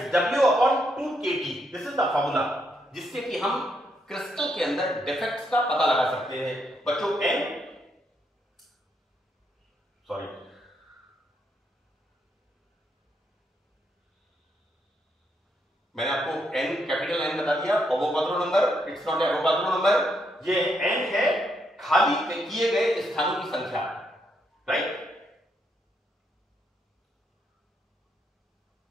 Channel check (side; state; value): both; normal; correlation 0.77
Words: W/2kT। This is the formula जिससे कि हम क्रिस्टल के अंदर डिफेक्ट्स का पता लगा सकते हैं। बच्चों मैंने आपको n कैपिटल N बता दिया, Avogadro number, it's not Avogadro number, ये n है खाली किए गए स्थानों की संख्या, राइट।